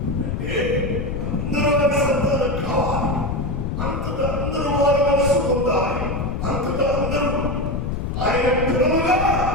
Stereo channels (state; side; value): noise; left; rumble, 3 dB below the sound